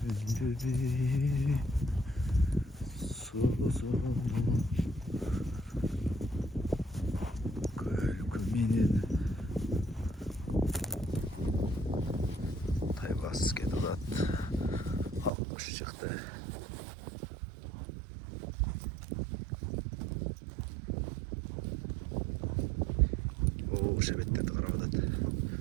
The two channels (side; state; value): left; drops out; at 15.3 s